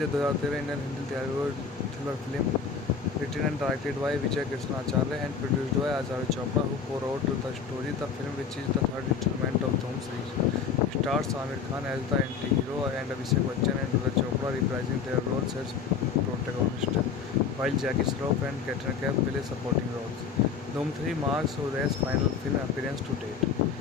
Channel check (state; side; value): quieter; right; 6.1 dB